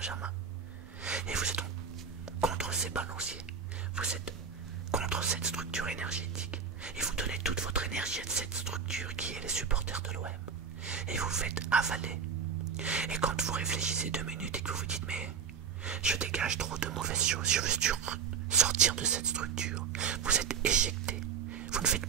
Et vous êtes donc contre ces balanciers. Vous êtes contre cette structure énergétique. Et vous donnez toute votre énergie à cette structure qui est les supporters de l'OM. Et vous faites avaler. Et quand vous réfléchissez 2 minutes et que vous vous dites « mais je dégage trop de mauvaises choses, je veux sortir de cette structure », vous êtes éjecté. Vous ne faites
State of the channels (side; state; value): left; quieter; 6.6 dB